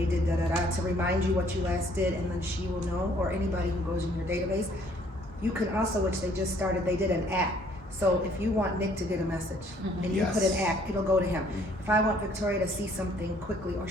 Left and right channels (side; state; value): both; normal; correlation 0.61